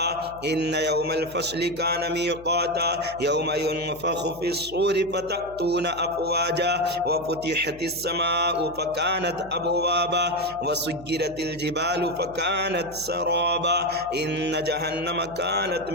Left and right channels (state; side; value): noise; left; hum, 20 dB below the sound